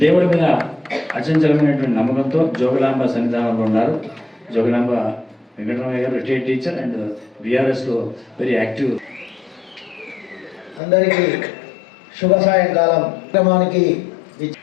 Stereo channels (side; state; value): right; drops out; at 10.8 s